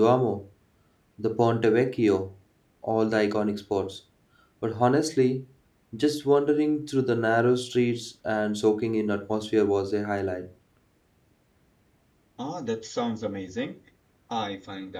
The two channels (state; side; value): identical; both; correlation 1.00